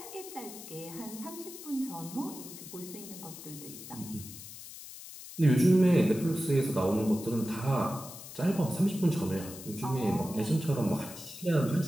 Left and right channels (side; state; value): left; noise; hiss, 13 dB below the sound